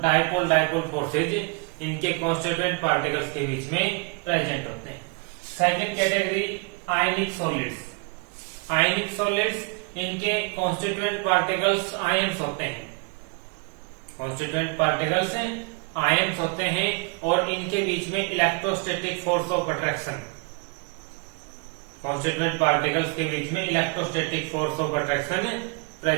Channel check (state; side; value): quieter; left; 31.8 dB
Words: डायपोल फोर्सेज इनके कॉन्स्टिट्यूएंट पार्टिकल्स के बीच में प्रेजेंट होते हैं। सेकेंड कैटेगरी, आयनिक सॉलिड्स। आयनिक सॉलिड्स, इनके कॉन्स्टिट्यूएंट पार्टिकल्स आयन्स होते हैं, कॉन्स्टिट्यूएंट पार्टिकल्स आयन्स होते हैं और इनके बीच में electrostatic force of attraction, constituent particles के बीच में electrostatic force of attraction